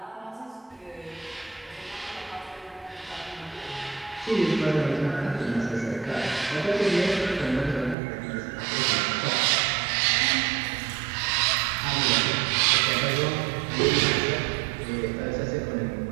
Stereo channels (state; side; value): drops out; left; at 8.0 s